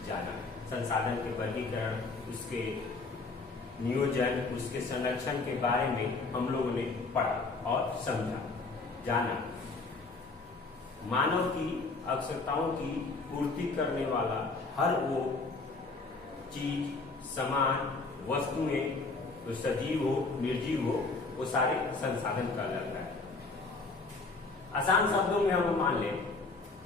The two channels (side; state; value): right; quieter; 3.8 dB